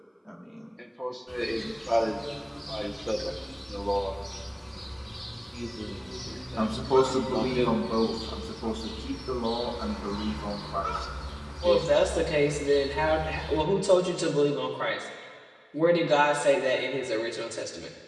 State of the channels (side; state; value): both; identical; correlation 1.00